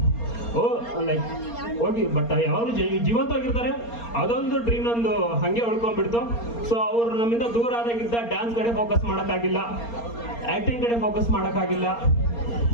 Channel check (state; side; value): late; right; 4.3 ms